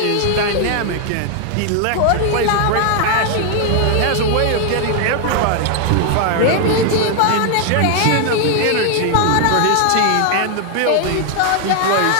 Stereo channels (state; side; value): different; both; correlation 0.00